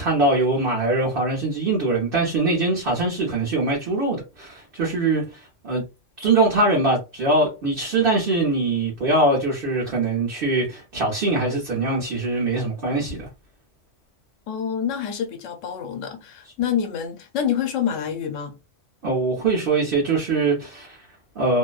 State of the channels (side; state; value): both; normal; correlation -0.05